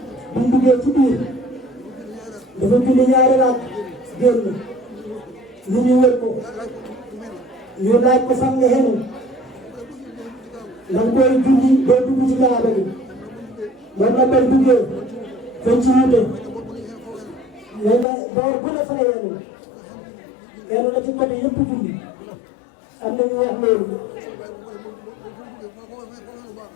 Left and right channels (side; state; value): right; drops out; at 18.1 s